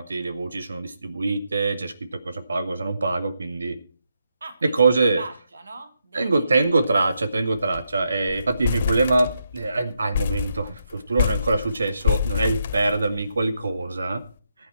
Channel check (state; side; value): inverted; both; correlation -0.81